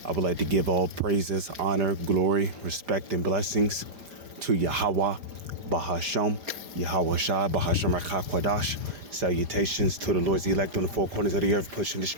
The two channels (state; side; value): late; left; 5.1 ms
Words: I would like to give all praises, honor, glory, respect, and blessings to Yahweh, Bahasham, Yahweh Shai, Bahasham HaKakwadash. Salutations to the Lord's elect on the four corners of the earth, pushing this